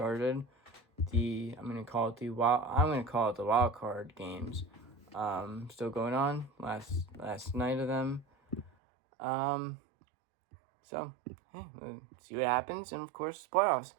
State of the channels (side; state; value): left; drops out; at 8.7 s